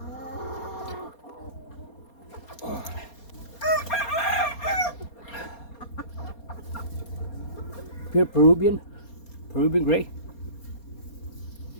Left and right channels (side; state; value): right; late; 4.3 ms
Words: Pure Peruvian gray.